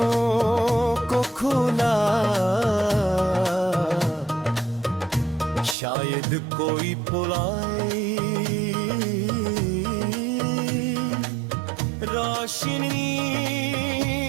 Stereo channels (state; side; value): drops out; left; at 5.8 s